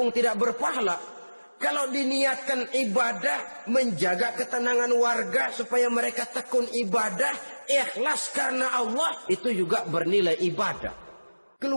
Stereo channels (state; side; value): inverted; both; correlation -1.00